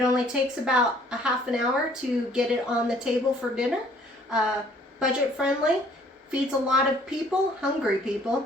only takes about a half an hour to get it on the table for dinner. Budget friendly, feeds a lot of people, hungry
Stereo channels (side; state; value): both; normal; correlation 0.59